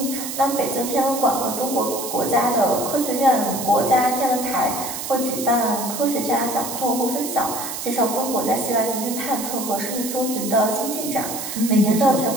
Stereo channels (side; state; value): right; noise; hiss, 6 dB below the sound